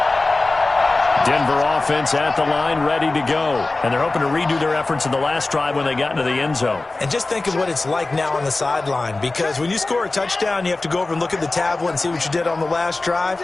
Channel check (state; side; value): quieter; right; 3.2 dB